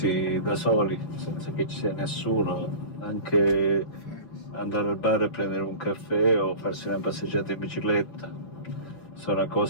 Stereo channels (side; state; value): right; late; 6.2 ms